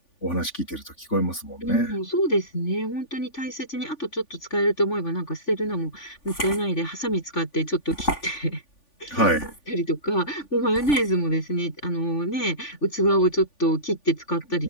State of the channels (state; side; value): late; right; 3.5 ms